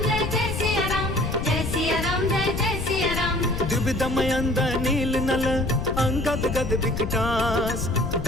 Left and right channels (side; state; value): left; noise; rumble, 4 dB below the sound